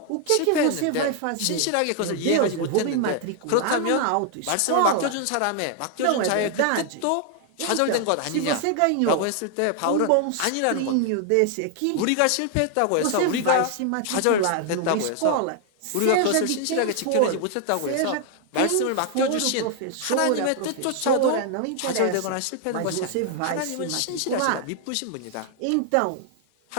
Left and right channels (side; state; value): both; different; correlation 0.00